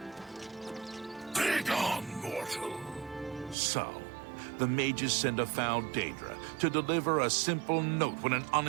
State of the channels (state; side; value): drops out; left; at 3.6 s